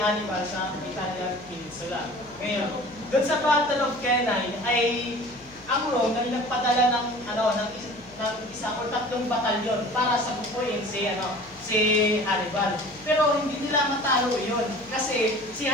sa Italian Peninsula. Ngayon, doon sa Battle of Cannae ay ang Rome ay nagpadala ng isang o tatlong batalyon para sabukuin si Hannibal. Pero hindi nila matalo iyon kasi si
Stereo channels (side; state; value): left; noise; hum, 24 dB below the sound